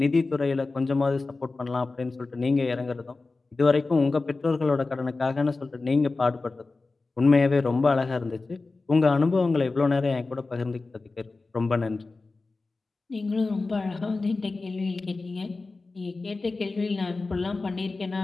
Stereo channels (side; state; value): right; quieter; 3.6 dB